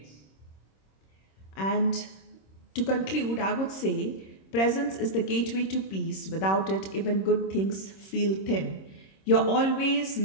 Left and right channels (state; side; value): late; right; 26 ms